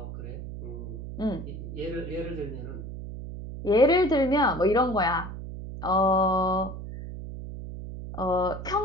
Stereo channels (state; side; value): noise; right; hum, 9 dB below the sound